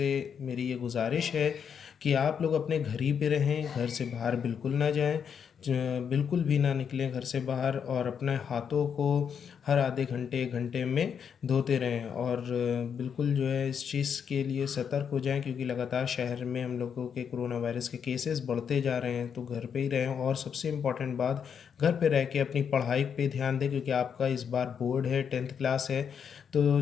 मेरी ये गुजारिश है कि आप लोग अपने घर ही पे रहें, घर से बाहर बिल्कुल ना जाएं, बिल्कुल भी ना निकलें घर से बाहर, और अपने हाथों को हर आधे घंटे एक घंटे में धोते रहें। और बिल्कुल जो है इस चीज़ के लिए सतर्क हो जाएं, क्योंकि लगातार शहर में हम लोगों के कोरोना वायरस के केसेस बढ़ते जा रहे हैं। तो घर पे ही रहें, और सबसे इम्पॉर्टेंट बात, घर पे रह के अपनी पढ़ाई पे ध्यान दें, क्योंकि आपका इस बार बोर्ड है, 10th क्लास है। तो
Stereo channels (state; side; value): quieter; right; 7.3 dB